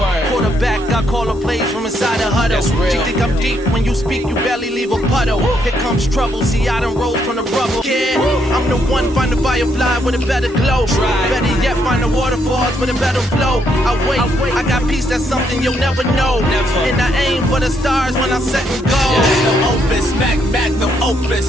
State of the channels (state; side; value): normal; both; correlation 0.75